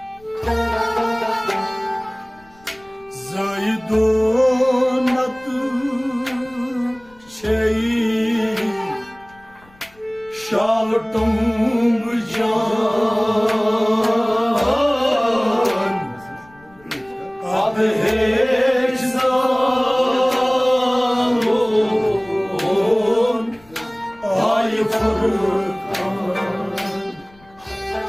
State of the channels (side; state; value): left; noise; rumble, 28 dB below the sound